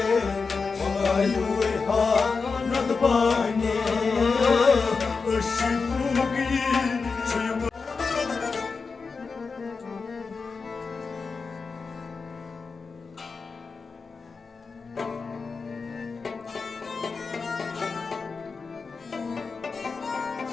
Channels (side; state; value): right; quieter; 4.7 dB